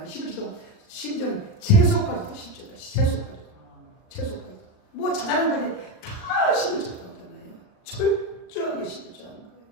11조도 심지어 채소까지도 10조다. 채소까지도. 뭐 자잘한까지 다 11조 나오잖아요. 철저하게 11조 하는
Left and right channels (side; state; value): right; late; 38 ms